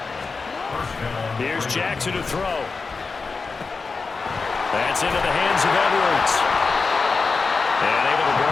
Here's Jackson to throw. That's into the hands of Edwards. And able to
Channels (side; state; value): right; quieter; 4.4 dB